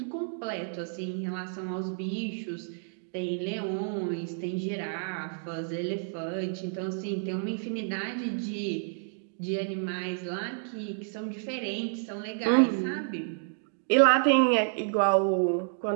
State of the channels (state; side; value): silent; left; digital silence